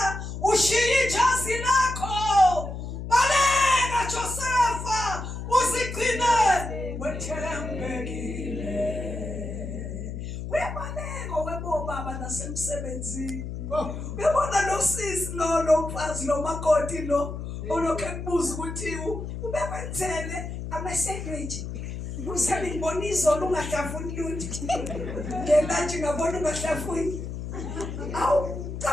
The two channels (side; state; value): left; noise; hum, 7 dB below the sound